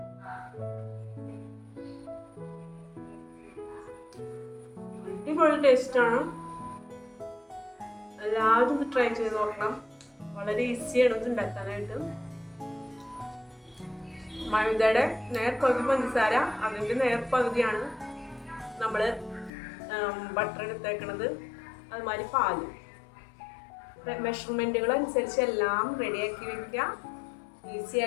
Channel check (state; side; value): drops out; right; at 19.5 s